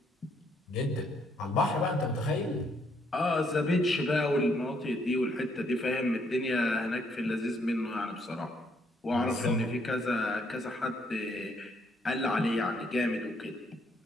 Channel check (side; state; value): both; normal; correlation 0.71